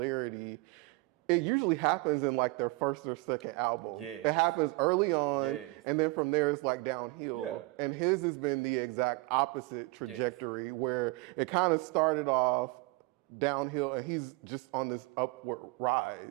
it usually happens in like their first or second album. Yes. It happens early on, Yes. and then from there it's like downhill. Yeah. And his has been the exact opposite trajectory where it kind of started off downhill and he's just on this upward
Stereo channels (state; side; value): quieter; left; 24.6 dB